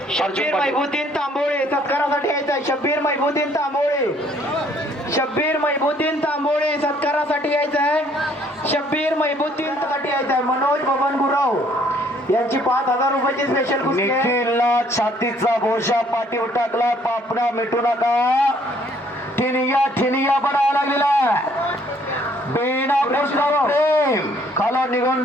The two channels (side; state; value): both; normal; correlation 0.63